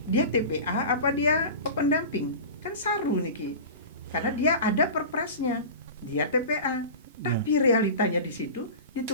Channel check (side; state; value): both; inverted; correlation -0.32